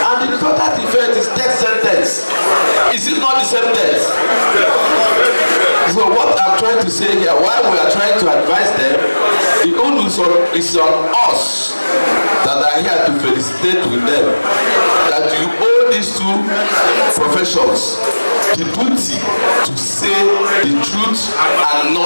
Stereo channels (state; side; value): inverted; both; correlation -1.00